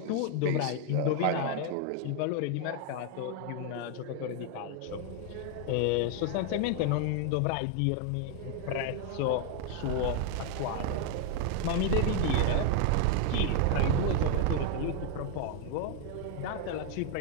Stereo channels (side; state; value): both; different; correlation 0.01